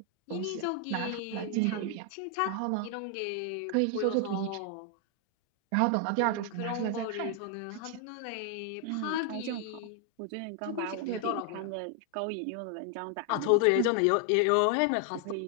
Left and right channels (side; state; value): both; different; correlation 0.00